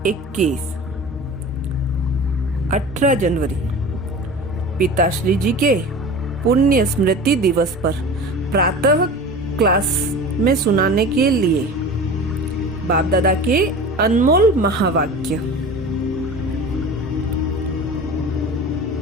18 जनवरी पिताश्री जी के पुण्य स्मृति दिवस पर प्रातः क्लास में सुनाने के लिए बाप दादा के अनमोल महावाक्य।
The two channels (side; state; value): both; normal; correlation 0.36